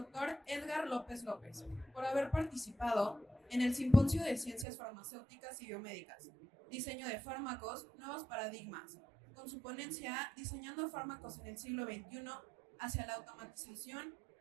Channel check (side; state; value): left; drops out; at 4.7 s